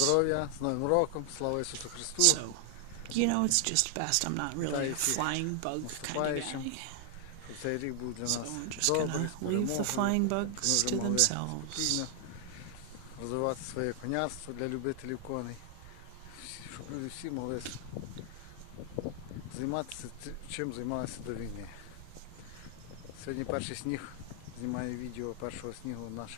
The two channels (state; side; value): different; both; correlation 0.00